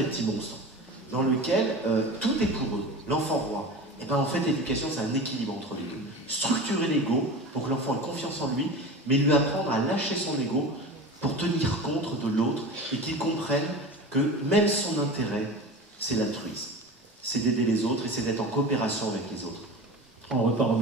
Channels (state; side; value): normal; both; correlation 0.32